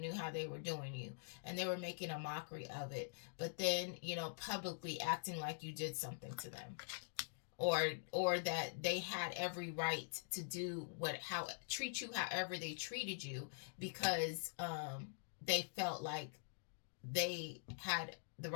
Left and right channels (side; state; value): right; silent; digital silence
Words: how they were doing you, and they were making a mockery of it. But then, publicly acting like you did something to them, or that they had every right to do treat you however they treated you, because they felt like they had the